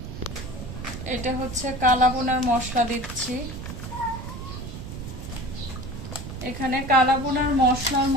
এটা হচ্ছে কালা বোনার মশলা দিচ্ছি। এখানে কালা বোনার মশলার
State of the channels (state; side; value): noise; right; rumble, 9 dB below the sound